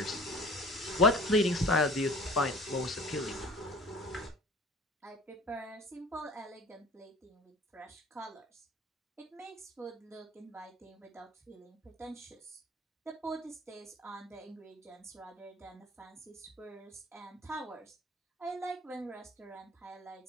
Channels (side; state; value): both; normal; correlation 0.45